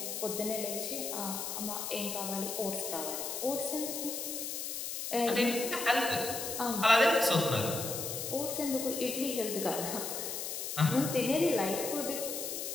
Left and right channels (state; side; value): noise; left; hiss, 4 dB below the sound